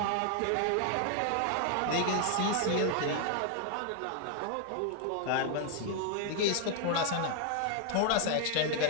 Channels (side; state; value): both; different; correlation 0.00